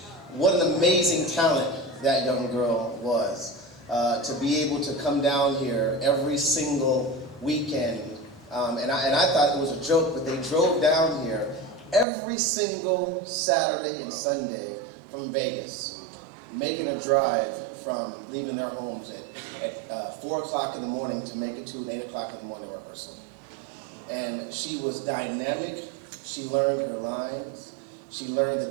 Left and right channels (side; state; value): left; drops out; at 12.1 s